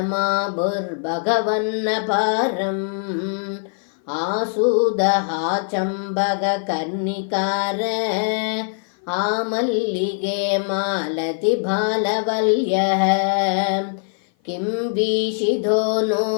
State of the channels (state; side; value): silent; right; 56 dB below the other